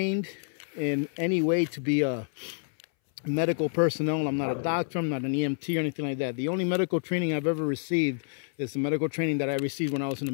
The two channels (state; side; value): silent; right; 59 dB below the other